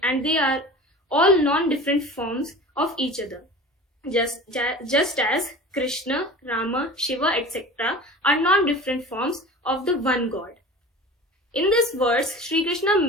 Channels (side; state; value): both; normal; correlation 0.37